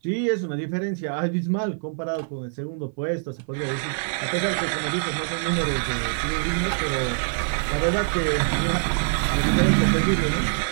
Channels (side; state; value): left; silent; 57 dB below the other